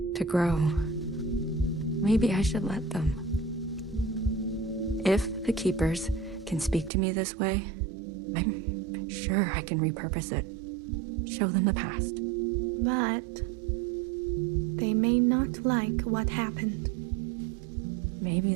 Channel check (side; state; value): left; drops out; at 6.9 s